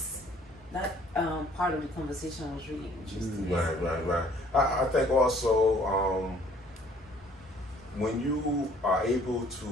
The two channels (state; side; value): normal; both; correlation 0.58